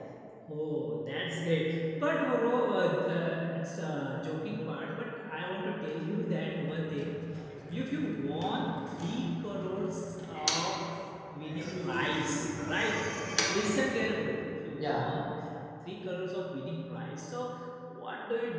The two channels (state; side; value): identical; both; correlation 1.00